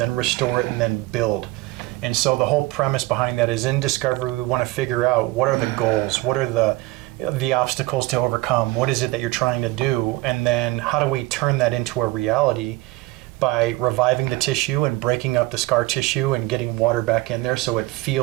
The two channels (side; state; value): left; quieter; 19.6 dB